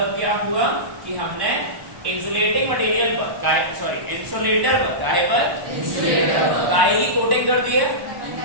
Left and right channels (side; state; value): left; late; 1.1 ms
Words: क्या हुआ कि हमने इंसुलेटिंग मटेरियल पर, सॉरी इंसुलेटर पर, काय पर? इंसुलेटर पर काय की कोटिंग कर दी है